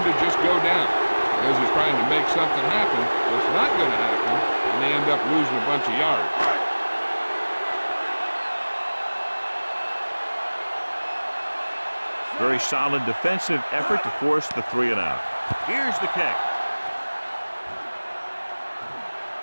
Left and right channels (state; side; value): inverted; both; correlation -1.00